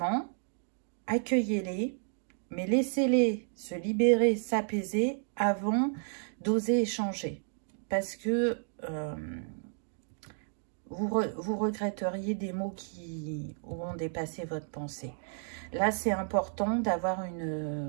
accueillez-les, mais laissez-les se libérer, s'apaiser avant d'oser échanger. Parce que vous regretteriez des mots qui auront dépassé votre pensée. Là, c'est important d'avoir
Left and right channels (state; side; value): silent; left; digital silence